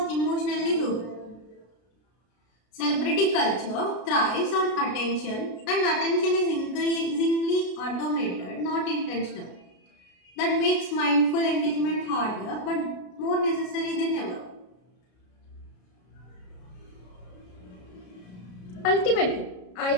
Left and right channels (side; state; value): right; late; 33 ms